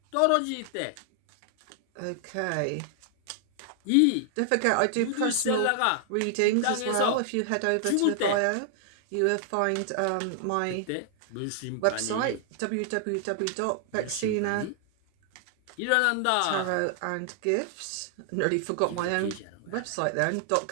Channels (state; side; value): different; both; correlation 0.00